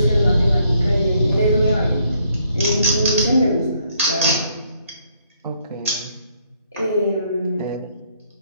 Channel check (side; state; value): both; inverted; correlation -0.70